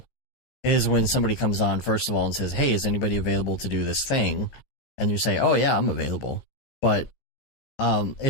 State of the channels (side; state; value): right; late; 15 ms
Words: is when somebody comes on, first of all, and says, hey, is anybody available to do this thing? And you say, oh, yeah, I'm available. But